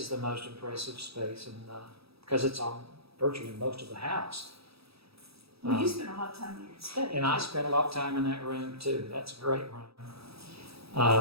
the most impressive space, and because it's on virtually most of the house. Well, you spend a lot of time in your study. And I spent a lot of time in that room too. That's a great room.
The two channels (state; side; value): late; left; 0.77 ms